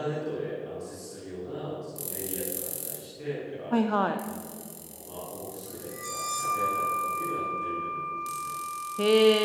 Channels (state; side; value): identical; both; correlation 1.00